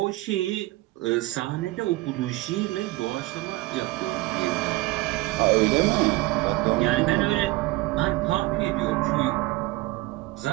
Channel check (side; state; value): left; quieter; 20.0 dB